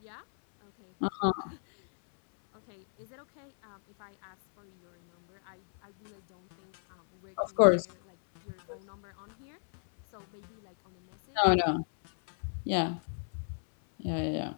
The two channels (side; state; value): right; silent; 56 dB below the other